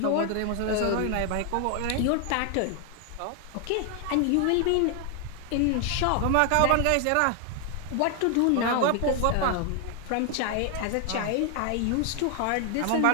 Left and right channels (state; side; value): different; both; correlation 0.00